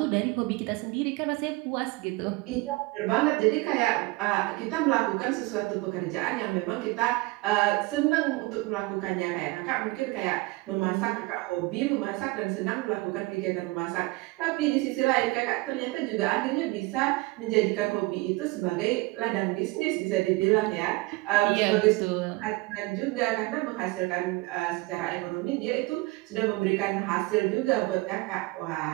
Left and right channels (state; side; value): quieter; left; 22.8 dB